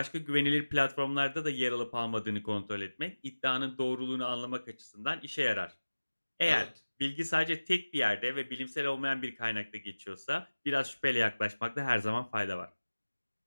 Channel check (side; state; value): both; inverted; correlation -1.00